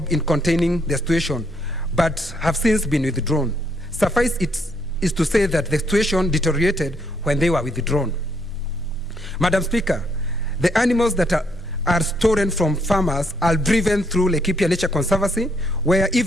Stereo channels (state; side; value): normal; both; correlation 0.72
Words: in containing the situation, but have since been withdrawn. Suffice it is to say that the situation deteriorated when they were withdrawn. Madam Speaker, the animals that are stolen from farmers are driven through Laikipia Nature Conservancy, where